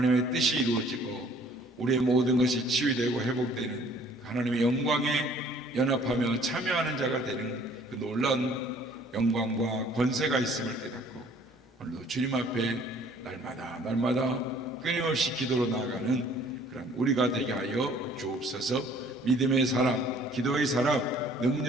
뜻이 이루어지고 우리의 모든 것이 치유되고 회복되는 하나님의 영광에 연합하며 참여하는 자가 되는 그 놀라운 영광과 권세가 있음을 깨닫고 오늘도 주님 앞에 날마다 끊임없이 기도로 나아가는 그런 우리가 되게 하여 주옵소서. 믿음의 사람, 기도의 사람,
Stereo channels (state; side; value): normal; both; correlation 0.56